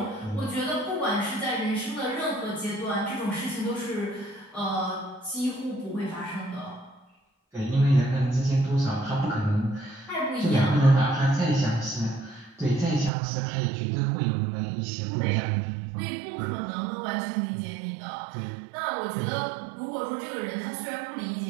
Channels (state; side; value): drops out; left; at 13.1 s